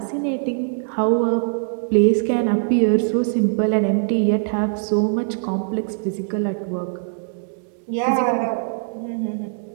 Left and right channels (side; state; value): left; silent; digital silence